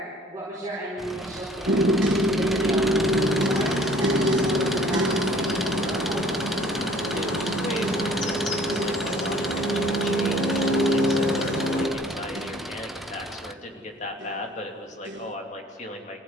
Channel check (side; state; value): both; normal; correlation 0.54